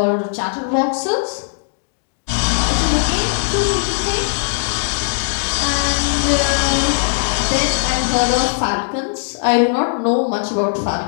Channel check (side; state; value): right; silent; digital silence